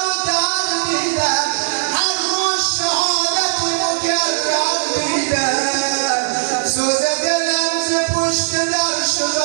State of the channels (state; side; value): silent; left; digital silence